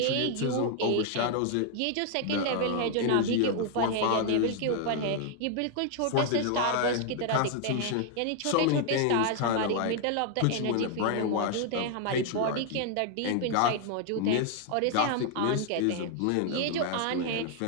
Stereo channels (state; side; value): different; both; correlation 0.00